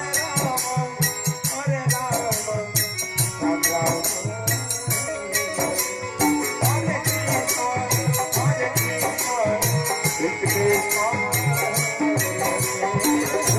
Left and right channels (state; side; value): identical; both; correlation 1.00